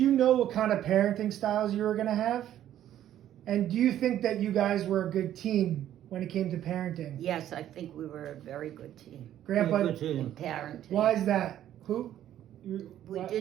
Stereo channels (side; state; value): left; quieter; 11.7 dB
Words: know what kind of parenting styles you were going to have? And do you think that you guys were a good team when it came to parenting? Yes, I think we were a very good team Grandpa, Very good in team. parenting. why is that? Who? We